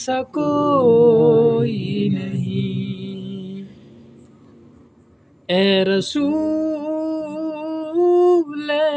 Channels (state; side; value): identical; both; correlation 1.00